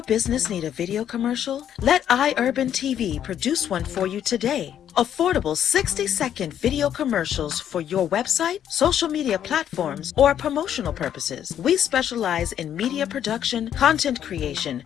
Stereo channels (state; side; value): quieter; right; 9.9 dB